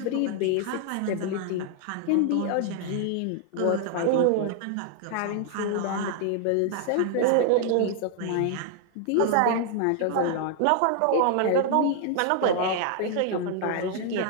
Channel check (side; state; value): both; different; correlation 0.00